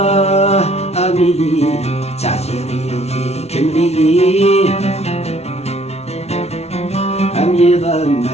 أميلي تعثيري كملي أمي ضم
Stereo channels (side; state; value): right; late; 0.31 ms